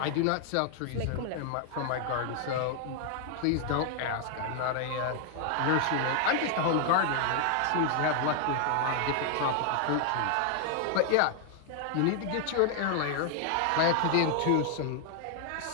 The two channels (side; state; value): both; different; correlation 0.00